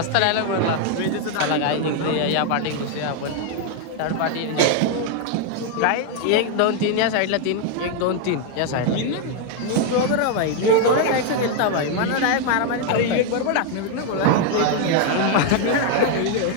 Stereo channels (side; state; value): both; different; correlation 0.00